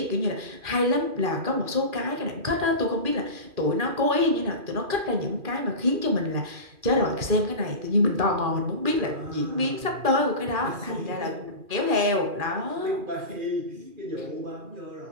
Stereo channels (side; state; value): left; late; 2.4 ms